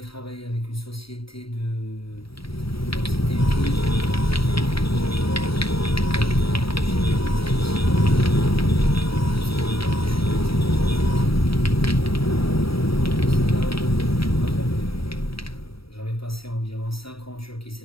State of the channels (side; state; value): right; late; 0.75 ms